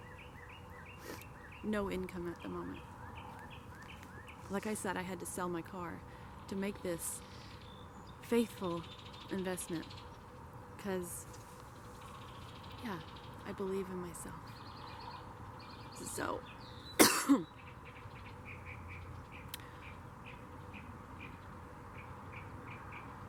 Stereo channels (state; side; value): identical; both; correlation 1.00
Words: no income at the moment. Like I said, I had to sell my car to make this faithful investment, because, yeah, I believe in myself. So,